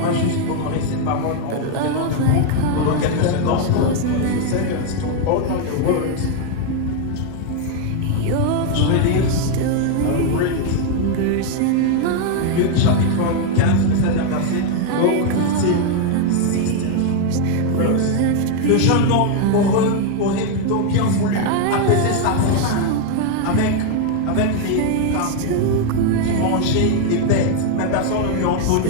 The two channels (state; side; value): different; both; correlation 0.01